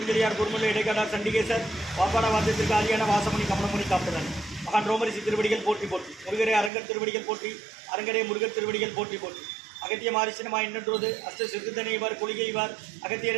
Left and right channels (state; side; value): drops out; left; at 6.7 s